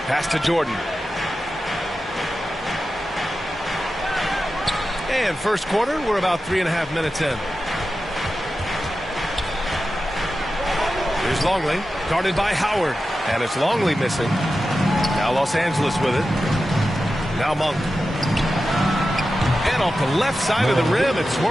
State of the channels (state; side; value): normal; both; correlation 0.92